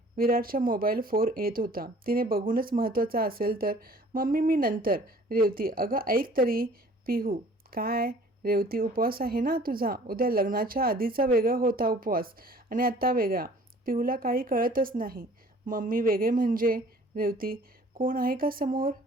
विराटच्या मोबाईल 4 येत होता. तिने बघूनच महत्त्वाचा असेल तर. मम्मी मी नंतर. रेवती, अगं ऐक तरी. पिहू, काय? रेवती, उपवास आहे ना तुझा. उद्या लग्नाच्या आधीचा वेगळा होता उपवास आणि आत्ता वेगळा. पिहूला काही कळतच नाही. मम्मी वेगळे म्हणजे? रेवती, कोण आहे का समोर?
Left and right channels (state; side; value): normal; both; correlation 0.52